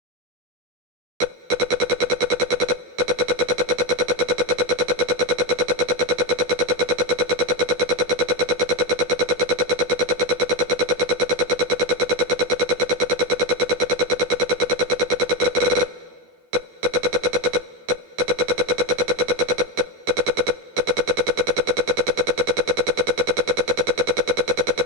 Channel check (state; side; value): late; left; 12 ms